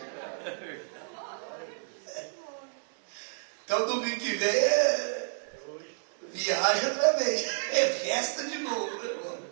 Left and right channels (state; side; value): silent; left; 57 dB below the other